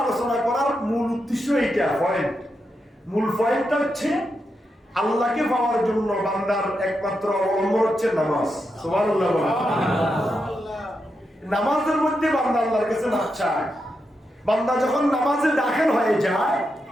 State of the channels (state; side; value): normal; both; correlation 0.85